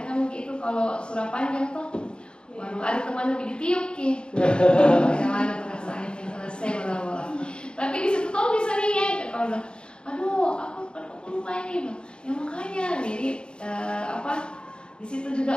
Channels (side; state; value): right; late; 0.051 ms